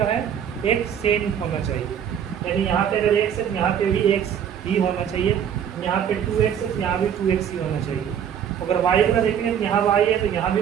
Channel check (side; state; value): left; quieter; 8.7 dB